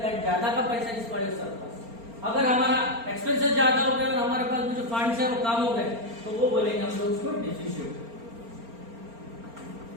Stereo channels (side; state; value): left; late; 4.3 ms